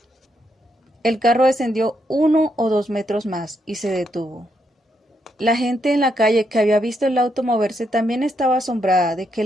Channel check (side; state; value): both; normal; correlation 0.78